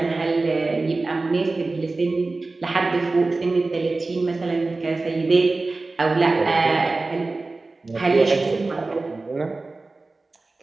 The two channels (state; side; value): quieter; left; 3.4 dB